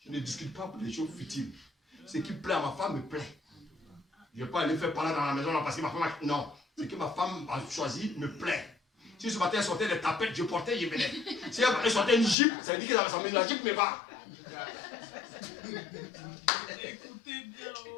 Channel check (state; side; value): drops out; right; at 12.4 s